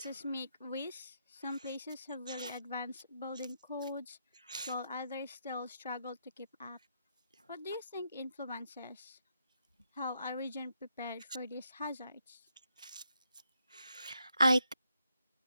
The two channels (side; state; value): both; inverted; correlation -0.80